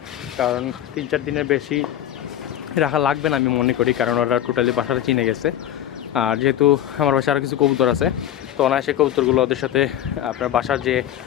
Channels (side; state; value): right; quieter; 11.4 dB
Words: কারণ 3-4 দিনের বেশি রাখা লাগবে না আমি মনে করি, কারণ ওরা টোটালি বাসাটা চিনে গেছে। আর যেহেতু আমার বাসায় আরও কিছু কবুতর আছে, তো অনায়াসে কবুতরগুলো ওদের সাথে আপনার বাসার যে